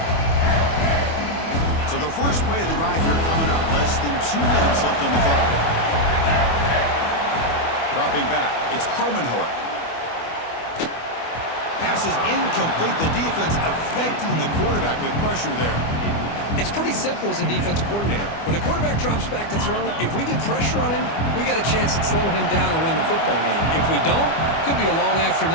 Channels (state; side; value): late; right; 25 ms